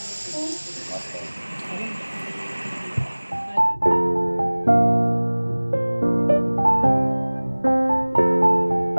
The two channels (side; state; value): both; inverted; correlation -1.00